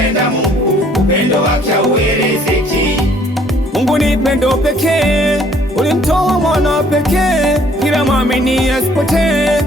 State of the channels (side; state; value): both; normal; correlation 0.60